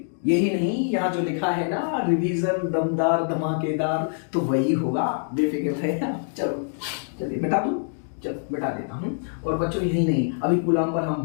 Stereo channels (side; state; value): right; silent; digital silence